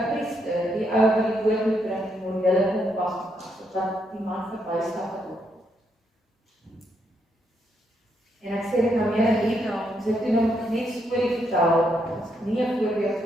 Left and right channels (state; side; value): normal; both; correlation 0.77